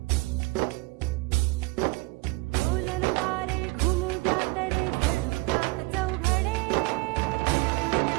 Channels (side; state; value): left; quieter; 24.9 dB